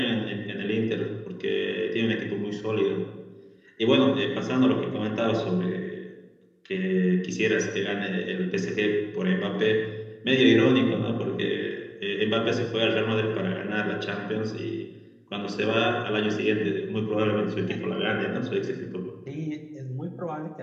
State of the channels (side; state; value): both; identical; correlation 1.00